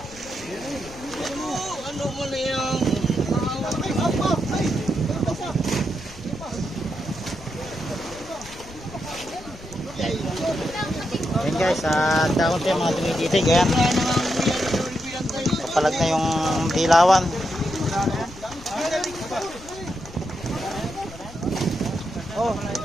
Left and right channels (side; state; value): left; noise; rumble, 18 dB below the sound